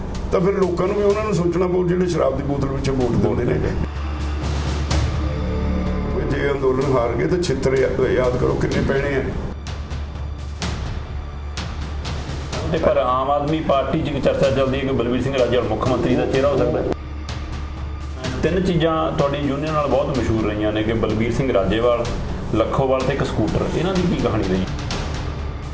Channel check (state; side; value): identical; both; correlation 1.00